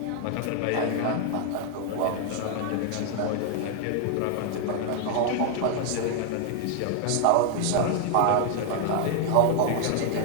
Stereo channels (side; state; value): both; different; correlation 0.00